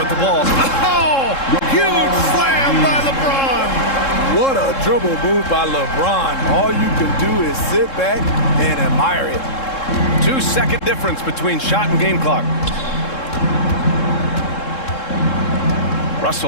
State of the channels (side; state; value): right; late; 3.7 ms